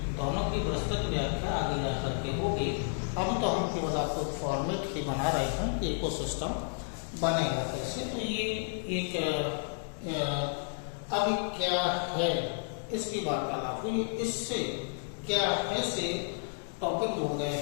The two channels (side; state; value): right; silent; digital silence